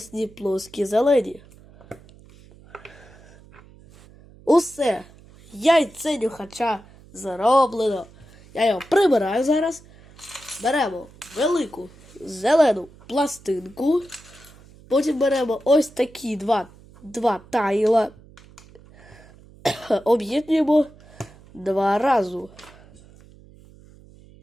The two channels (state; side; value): noise; right; hum, 24 dB below the sound